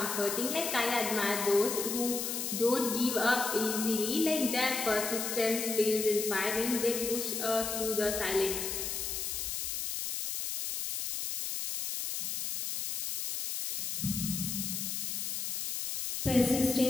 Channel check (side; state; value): left; noise; hiss, 3 dB below the sound